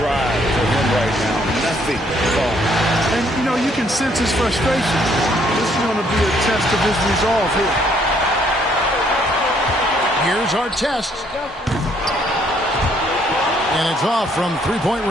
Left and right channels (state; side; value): normal; both; correlation 0.67